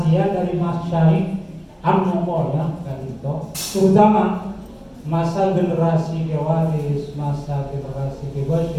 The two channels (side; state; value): both; identical; correlation 1.00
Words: dari masyayikh Anukoya Kak Dinto, terutama masa generasi kewaris, masa generasi